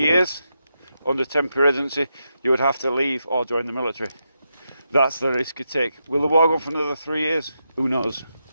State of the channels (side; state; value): both; inverted; correlation -0.85